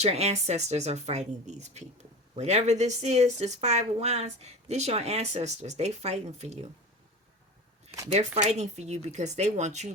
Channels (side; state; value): both; normal; correlation 0.32